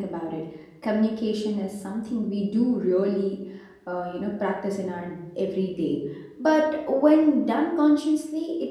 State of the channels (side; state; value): both; identical; correlation 1.00